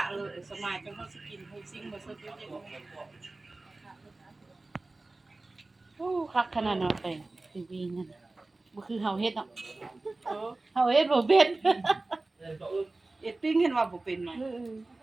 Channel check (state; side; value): quieter; left; 3.1 dB